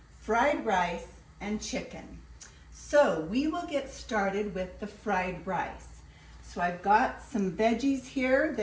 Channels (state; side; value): identical; both; correlation 1.00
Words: fried rice, and chicken. So we will get started with the fried rice. So I've got some veggies here.